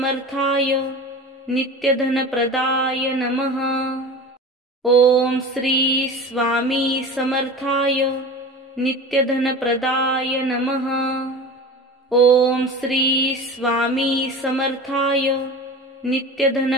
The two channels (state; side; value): normal; both; correlation 0.33